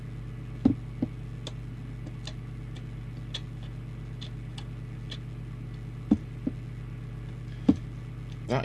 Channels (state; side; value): identical; both; correlation 1.00